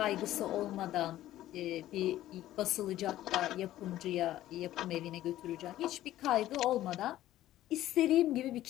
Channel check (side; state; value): right; quieter; 14.0 dB